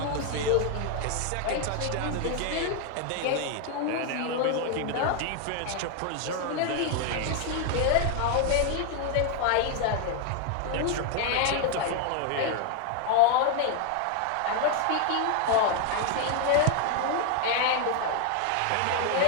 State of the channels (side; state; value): both; different; correlation 0.00